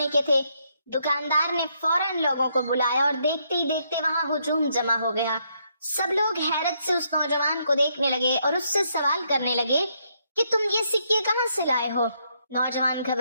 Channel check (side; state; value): both; inverted; correlation -0.75